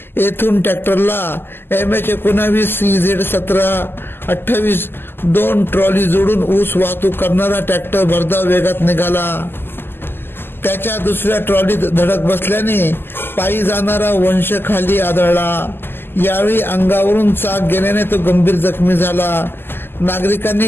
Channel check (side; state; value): right; late; 0.10 ms